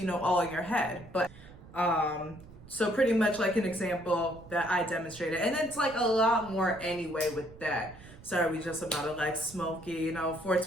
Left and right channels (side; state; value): right; noise; rumble, 19 dB below the sound